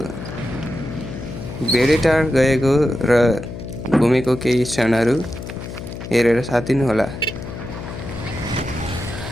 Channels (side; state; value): left; noise; hum, 9 dB below the sound